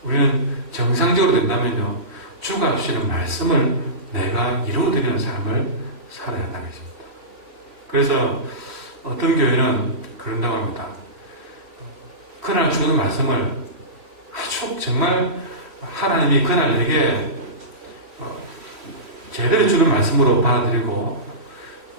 우리는 정상적으로 된다면요, 주가 주시는 말씀을 내가 이루어드리는 삶을 살아야 한다는 것입니다. 그래서 어떤 교회는 그런다고 합니다. 그날 주는 말씀을 아주 정말 하나님이 그날 내게 제대로 주는 말씀으로 받아들이고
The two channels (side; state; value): left; late; 3.1 ms